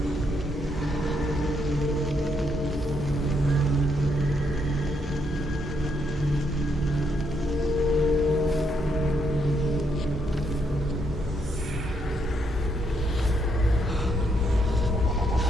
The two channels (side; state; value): both; normal; correlation 0.76